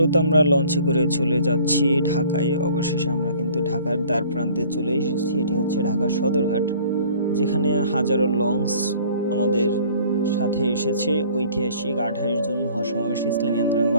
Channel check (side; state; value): both; inverted; correlation -0.52